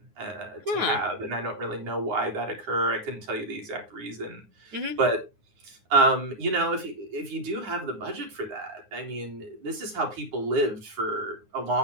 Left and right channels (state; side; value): late; left; 9.6 ms